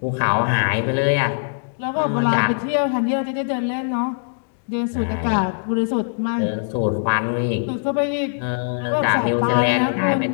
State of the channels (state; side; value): silent; right; digital silence